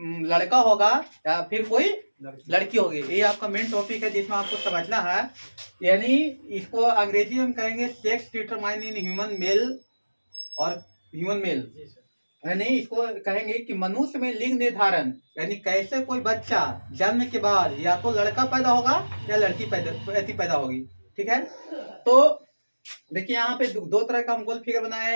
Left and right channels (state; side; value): inverted; both; correlation -1.00